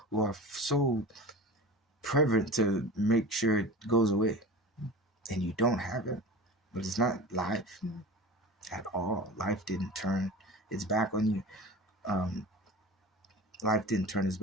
who are so prevalent to make sure it goes away, and you don't have it. But it's not life at all. Life didn't turn its back on you. Life didn't turn its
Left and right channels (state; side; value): normal; both; correlation 0.35